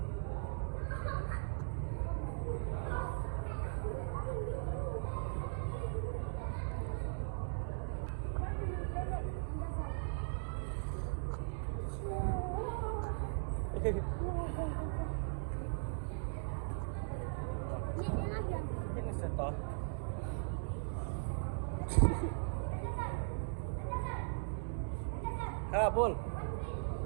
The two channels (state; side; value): silent; left; digital silence